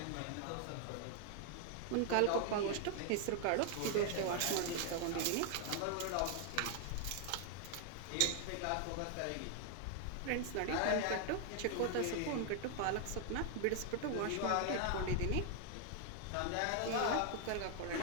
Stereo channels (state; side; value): different; both; correlation 0.00